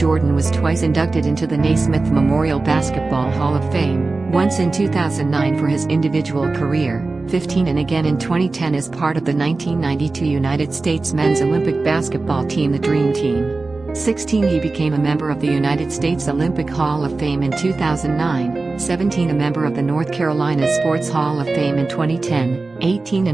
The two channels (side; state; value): left; quieter; 3.6 dB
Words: was twice inducted into the Naismith Memorial Basketball Hall of Fame, once in 2009 for his individual career, 15 and again in 2010 as part of the 1992 United States men's Olympic basketball team, the Dream Team. 16 He became a member of the United States Olympic Hall of Fame in 2009, 17 a member of the North Carolina Sports Hall of Fame in 2010, 18